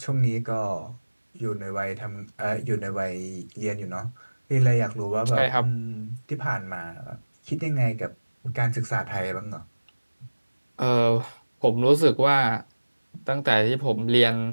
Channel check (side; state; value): both; inverted; correlation -1.00